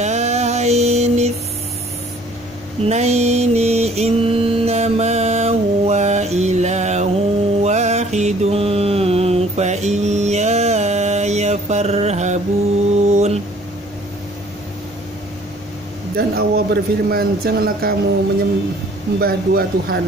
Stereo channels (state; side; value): normal; both; correlation 0.56